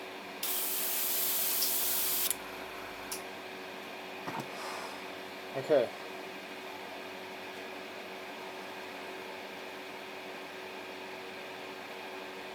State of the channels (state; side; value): identical; both; correlation 1.00